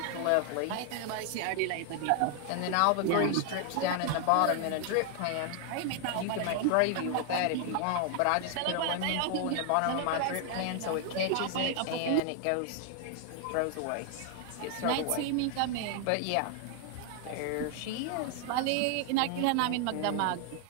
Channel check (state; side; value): different; both; correlation 0.00